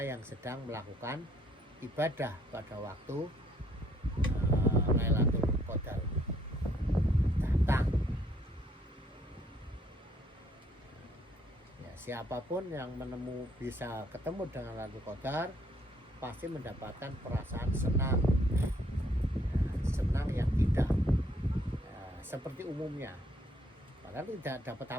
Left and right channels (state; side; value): normal; both; correlation 0.67